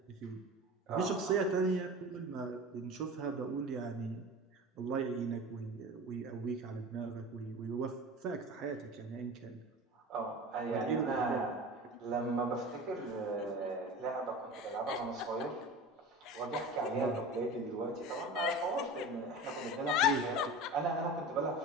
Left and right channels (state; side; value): normal; both; correlation 0.33